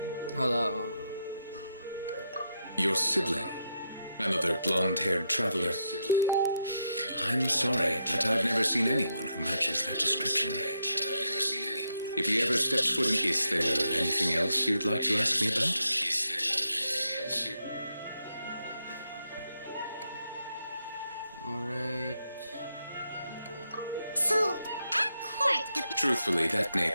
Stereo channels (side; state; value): both; inverted; correlation -0.81